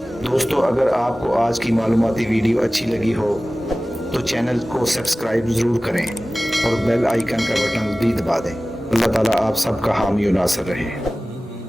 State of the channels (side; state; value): both; normal; correlation 0.97